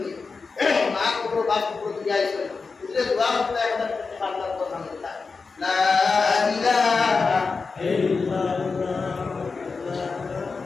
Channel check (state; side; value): quieter; right; 4.5 dB